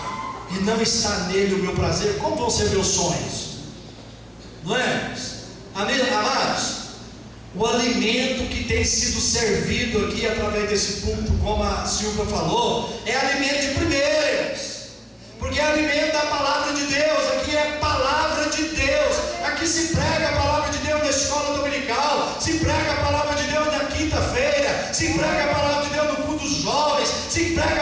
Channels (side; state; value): both; identical; correlation 1.00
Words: e não está nele o meu prazer, como vão ser meus sonhos? Não é? Amados, o alimento que tem sido servido aqui através desse púlpito, como a Silvia falou, é alimento de primeiros, porque é alimento da palavra de Deus. Aqui é palavra de Deus, aqui se prega a palavra de Deus na escola dominical, se prega a palavra de Deus na quinta-feira, se prega a palavra de Deus no culto dos jovens, se